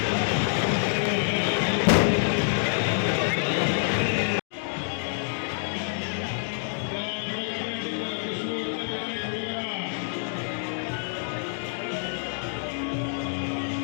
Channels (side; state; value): right; silent; digital silence